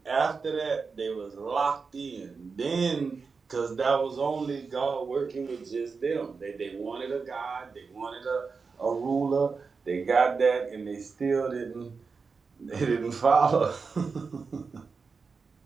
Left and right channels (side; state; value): left; quieter; 4.9 dB